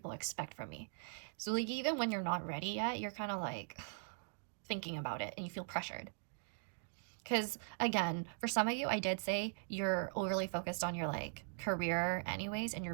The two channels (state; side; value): silent; left; digital silence